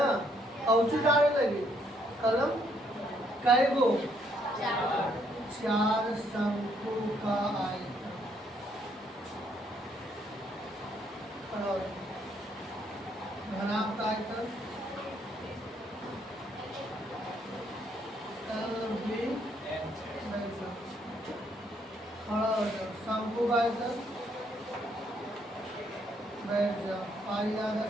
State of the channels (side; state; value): both; normal; correlation 0.70